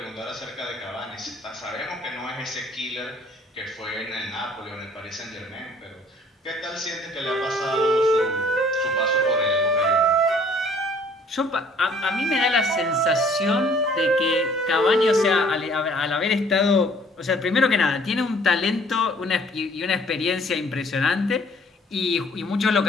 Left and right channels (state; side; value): normal; both; correlation 0.57